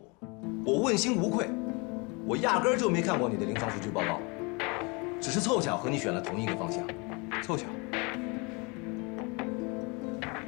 我，我问心无愧。我压根儿就没看过你的临床数据报告，只是凑巧和你选了同一个方向。凑巧。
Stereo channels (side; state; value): right; quieter; 29.4 dB